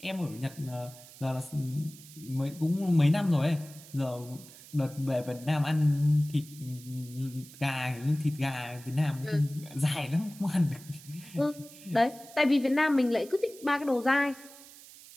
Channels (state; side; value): noise; right; hiss, 19 dB below the sound